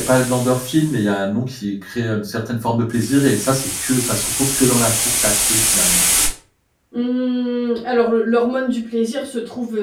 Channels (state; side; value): identical; both; correlation 1.00